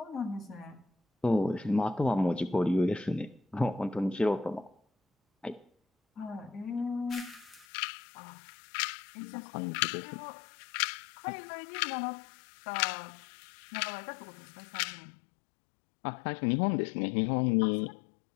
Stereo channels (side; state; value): right; drops out; at 7.7 s